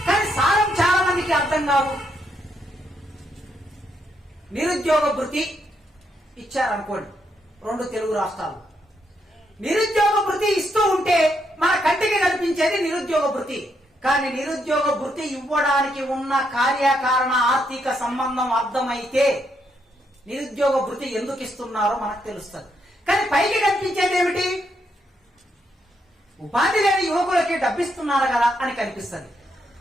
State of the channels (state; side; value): normal; both; correlation 0.78